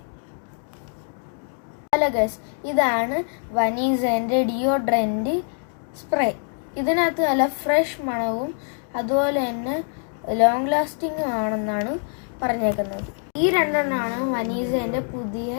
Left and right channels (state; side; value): silent; right; 55 dB below the other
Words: ഹലോ ഗൈസ്, ഇതാണ് വനീസന്റെ ഡിയോഡ്രന്റ് സ്പ്രേ. ഇതിനകത്ത് നല്ല ഫ്രഷ് മണവും അതുപോലെ തന്നെ ലോങ് ലാസ്റ്റിംഗും ആണെന്നാണ് പറഞ്ഞേക്കുന്നത്. ഈ രണ്ടെണ്ണമാണ് വനീസന്റെ പുതിയ